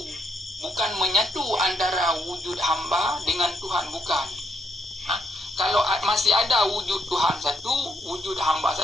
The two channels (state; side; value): normal; both; correlation 0.74